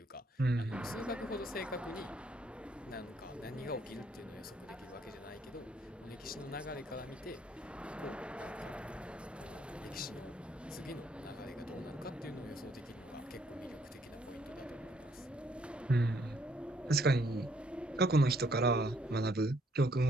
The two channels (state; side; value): normal; both; correlation 0.68